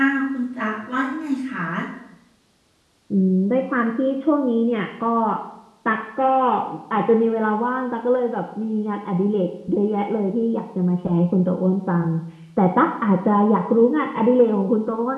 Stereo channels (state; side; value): identical; both; correlation 1.00